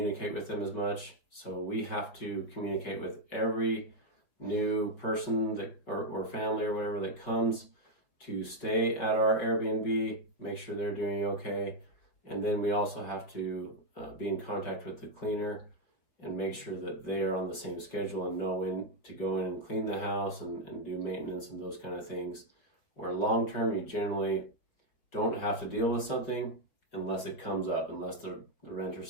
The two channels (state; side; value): late; right; 5.5 ms